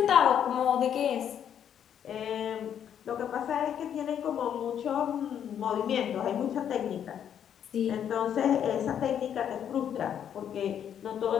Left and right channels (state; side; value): quieter; right; 9.1 dB